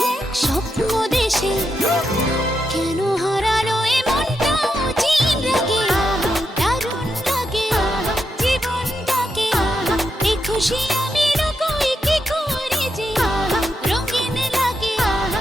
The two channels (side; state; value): both; normal; correlation 0.84